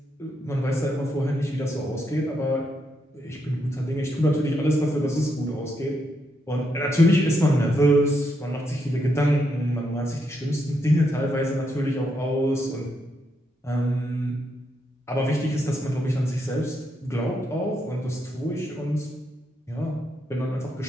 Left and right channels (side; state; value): both; normal; correlation 0.79